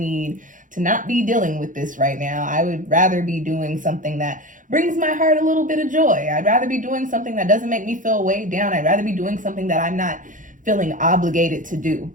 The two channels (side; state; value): left; late; 0.38 ms